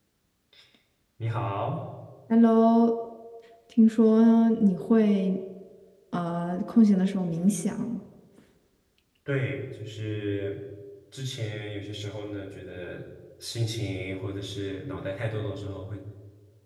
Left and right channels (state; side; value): identical; both; correlation 1.00